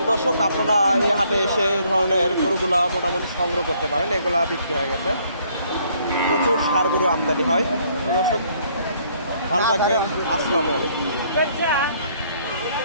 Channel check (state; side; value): inverted; both; correlation -0.65